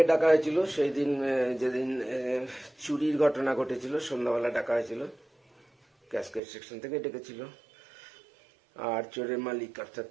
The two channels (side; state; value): left; drops out; at 6.4 s